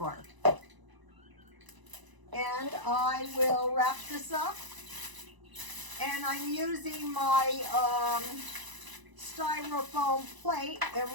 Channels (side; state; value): left; late; 1.0 ms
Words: And I will wrap this up. And I'm using my styrofoam plate, and